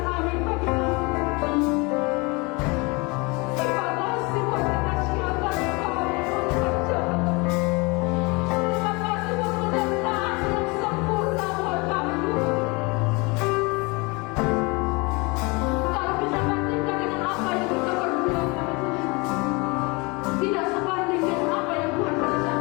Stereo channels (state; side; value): quieter; right; 27.5 dB